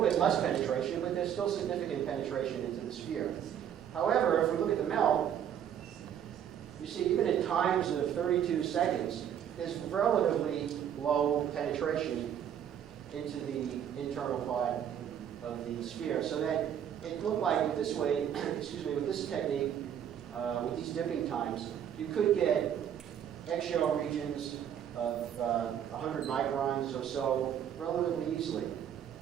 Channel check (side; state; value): left; quieter; 9.4 dB